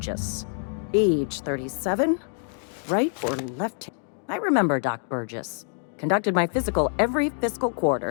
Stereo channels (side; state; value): right; silent; 61 dB below the other